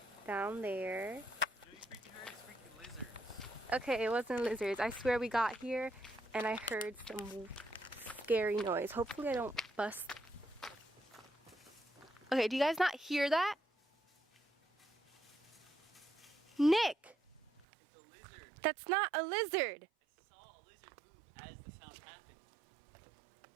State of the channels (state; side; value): drops out; left; at 17.6 s